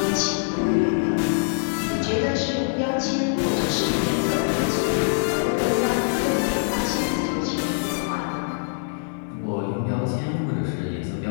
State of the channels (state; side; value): silent; right; digital silence